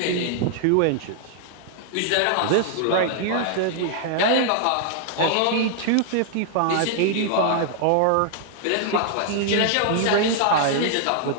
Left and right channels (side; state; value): both; different; correlation 0.00